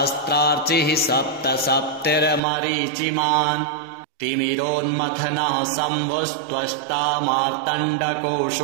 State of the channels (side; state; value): left; drops out; at 2.4 s